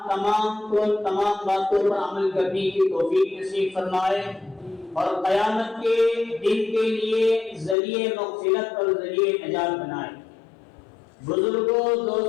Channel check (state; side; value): drops out; right; at 7.8 s